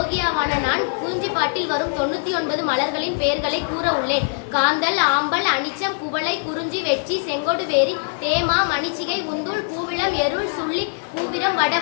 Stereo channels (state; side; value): silent; right; digital silence